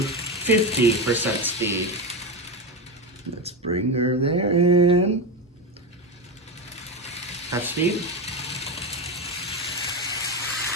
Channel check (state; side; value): normal; both; correlation 0.14